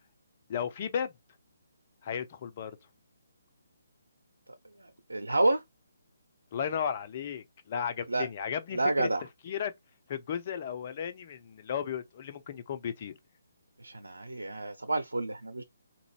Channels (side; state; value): both; inverted; correlation -0.80